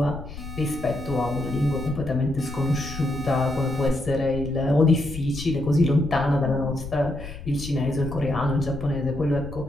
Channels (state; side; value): noise; left; rumble, 11 dB below the sound